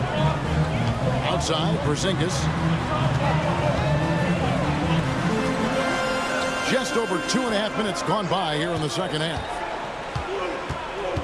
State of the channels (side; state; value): both; identical; correlation 1.00